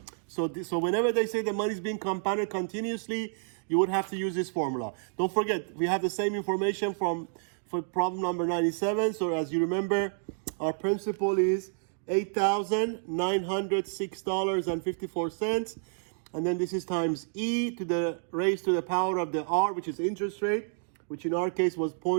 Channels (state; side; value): silent; left; digital silence